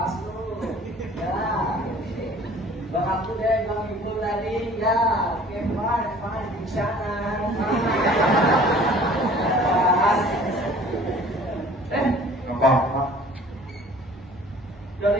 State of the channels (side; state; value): both; normal; correlation 0.50